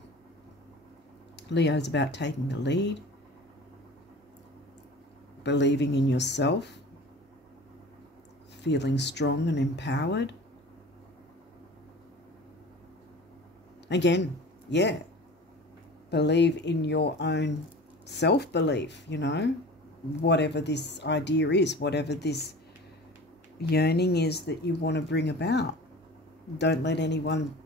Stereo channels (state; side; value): normal; both; correlation 0.39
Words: Leo's about taking the lead, believing in yourself, feeling strong and empowered. Again, yeah, believe in your own self-belief, you know, whatever this idea is, whatever this yearning is that you want to bring about. Don't let anyone